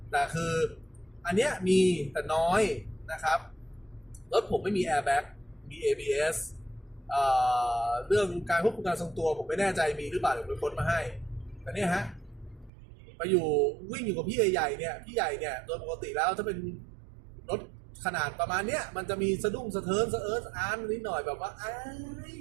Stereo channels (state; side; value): drops out; left; at 12.7 s